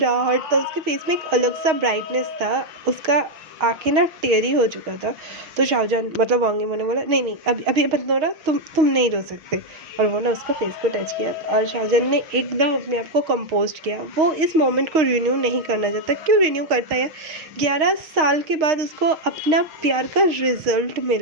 था उसके फेस में, एक अलग सा ब्राइटनेस था, उसका आंखें ना टेरी हो चुका था। तो शाहजहान मतलब वांगीबो ने बोला नहीं नहीं, अभी अभी मत रो रहा, तुम नहीं रो सकते, और वो ना उसका फेस को टच किया, और शाहजहान ने एकदम अपने आप को कंपोस्ट किया। वो इस मोमेंट को रिन्यू नहीं करना चाहता, क्यों रिन्यू करता है यार, 11 साल के बाद उसको अपना प्यार का रिजल्ट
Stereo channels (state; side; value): late; left; 6.4 ms